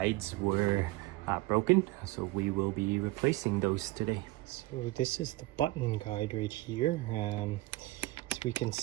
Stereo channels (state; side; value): quieter; left; 19.8 dB